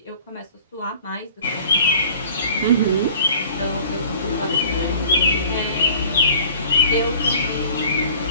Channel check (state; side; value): inverted; both; correlation -0.47